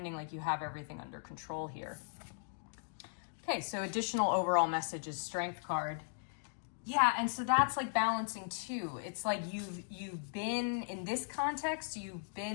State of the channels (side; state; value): right; silent; digital silence